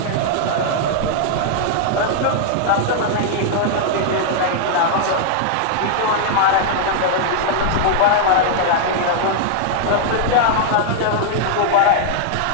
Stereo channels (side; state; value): both; different; correlation -0.01